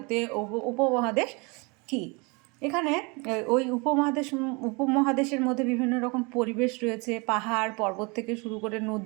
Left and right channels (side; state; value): left; quieter; 29.4 dB